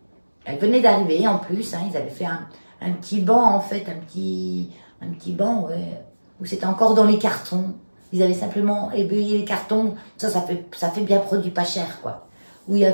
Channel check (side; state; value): both; inverted; correlation -1.00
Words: Elle venait d'arriver, en plus. Hein, ils avaient fait un petit banc, en fait, un petit banc, ouais, où c'était encore dans les cartons. Ils avaient simplement ébeuillé les cartons. Ça fait bien produit pas cher, quoi. Où il y